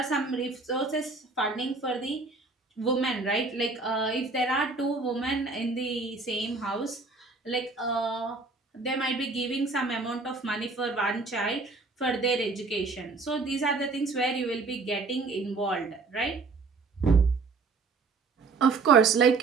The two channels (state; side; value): quieter; left; 4.0 dB